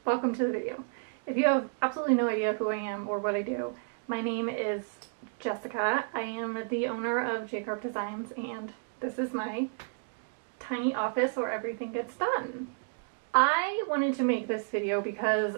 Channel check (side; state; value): left; quieter; 38.2 dB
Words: welcome to the video. If you have absolutely no idea who I am or what I do, my name is Jessica. I am the owner of J Designs, and this is my tiny office where everything gets done. I wanted to make this video because